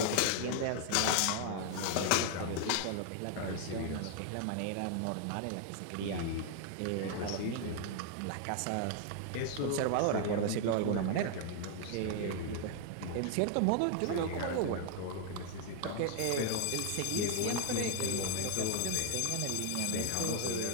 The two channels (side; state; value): both; different; correlation 0.00